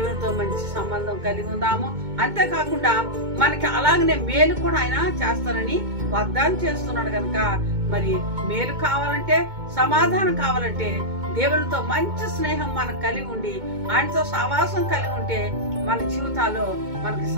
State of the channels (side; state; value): left; late; 2.2 ms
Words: మంచి సంబంధం కలిగి ఉందాము. అంతేకాకుండా మనకి అలాగనే మేలు కూడా ఆయన చేస్తానని వాగ్దానం చేస్తున్నాడు కనుక మరి మేలు కావాలంటే, సమాధానం కావాలంటే దేవునితో మంచి స్నేహం మనకు కలిగి ఉండి ఆయనతో సహవాసం కలిగి ఉంటే మన జీవితాల్లో మనకి